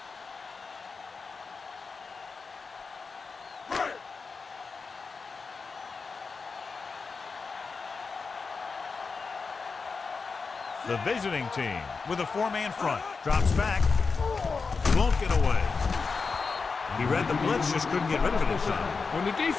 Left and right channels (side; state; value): right; quieter; 4.7 dB